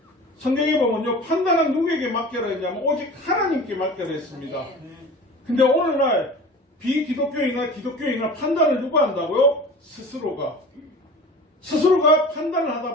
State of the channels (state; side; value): normal; both; correlation 0.38